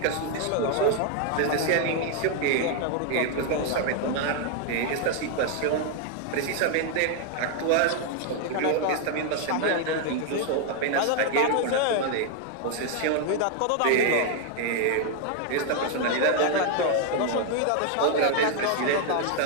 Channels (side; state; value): both; different; correlation 0.00